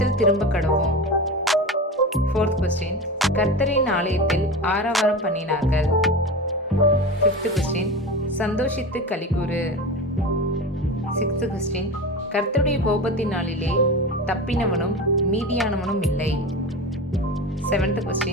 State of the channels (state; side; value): normal; both; correlation 0.27